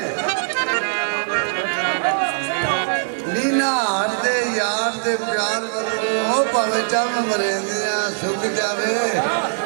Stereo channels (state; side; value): silent; left; digital silence